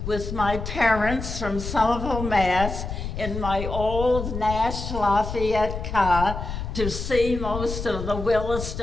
with my parents from Somerville, Mass. In my old Nash Lafayette car to see most of the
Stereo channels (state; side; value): noise; left; rumble, 6 dB below the sound